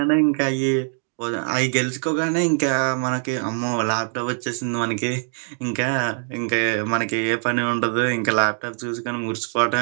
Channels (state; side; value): silent; left; digital silence